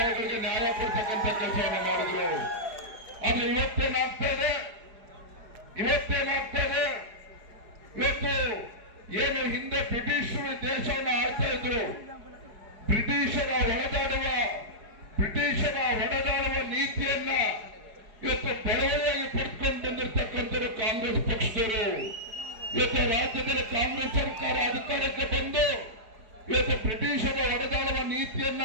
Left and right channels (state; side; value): late; left; 4.8 ms